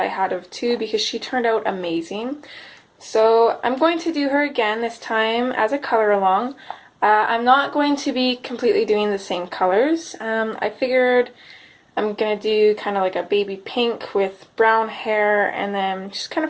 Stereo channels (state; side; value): identical; both; correlation 1.00